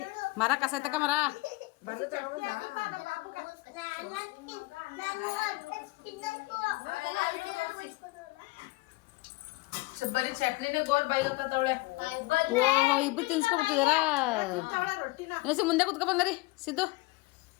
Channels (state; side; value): quieter; right; 22.2 dB